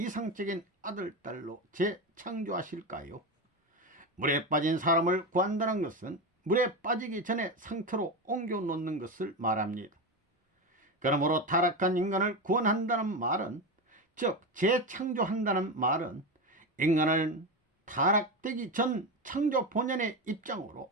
아들딸로 재창조하실까요? 물에 빠진 사람을 구한다는 것은 물에 빠지기 전에 상태로 옮겨 놓는 것을 말합니다. 그러므로 타락한 인간을 구원한다는 말은, 즉 재창조한다는 말은 인간을 타락되기 전 창조 본연의 입장으로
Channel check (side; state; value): both; normal; correlation 0.17